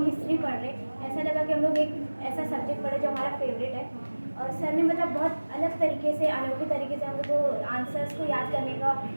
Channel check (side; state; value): both; inverted; correlation -1.00